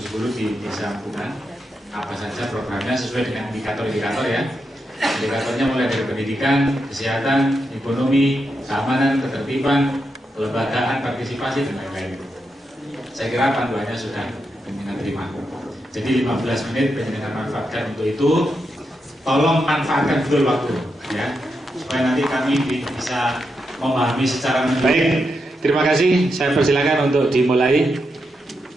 di Desa Bunga. Apa saja programnya sesuai dengan indikator-indikator ya. Indikatornya mulai dari pendidikan, kesehatan, ekonomi, keamanan, ketertiban, kelembagaan, partisipasi dan lain-lain. Saya kira panduannya sudah penjenengan terima. Jadi 15 menit penjenengan manfaatkan untuk itu. Tolong manfaatkan betul waktu ya, supaya nanti kami bisa memahami secara menyeluruh. Baik, terima kasih. Saya persilakan untuk dimulai.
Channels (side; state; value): both; normal; correlation 0.85